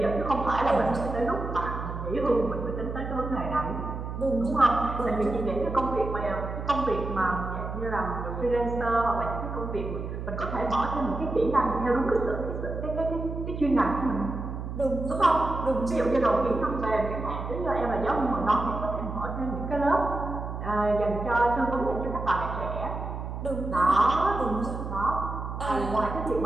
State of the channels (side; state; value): right; noise; hum, 6 dB below the sound